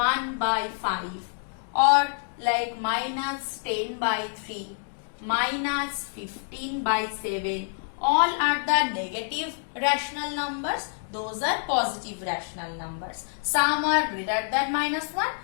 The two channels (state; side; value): silent; right; digital silence